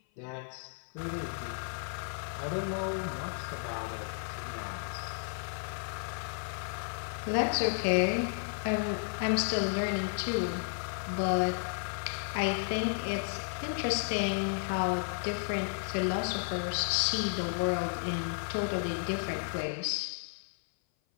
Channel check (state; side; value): silent; right; 56 dB below the other